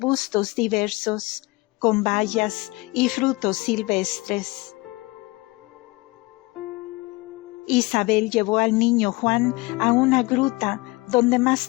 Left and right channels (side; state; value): right; quieter; 23.2 dB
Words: diversos, con bayas y frutos silvestres. Isabel llevó al niño Juan a una gruta donde